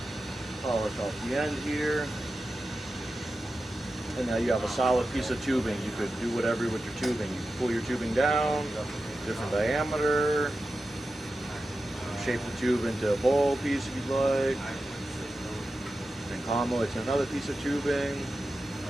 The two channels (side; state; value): both; normal; correlation 0.92